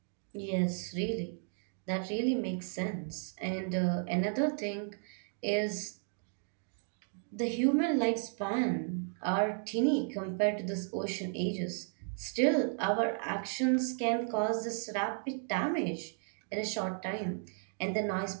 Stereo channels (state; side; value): silent; left; 55 dB below the other